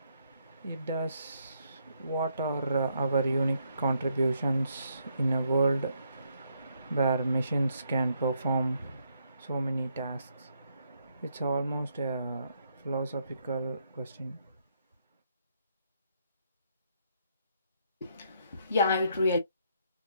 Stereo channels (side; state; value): both; inverted; correlation -0.75